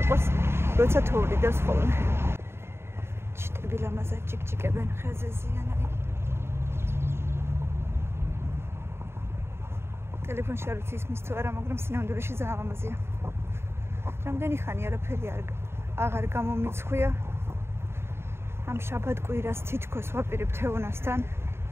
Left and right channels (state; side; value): late; left; 0.12 ms